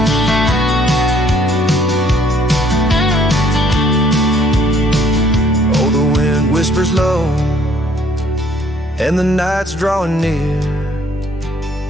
Oh, the wind whispers low and the night's drawing near.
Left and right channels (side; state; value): both; normal; correlation 0.63